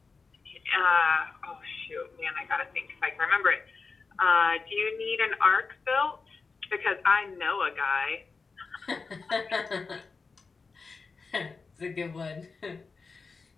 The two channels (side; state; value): right; quieter; 4.5 dB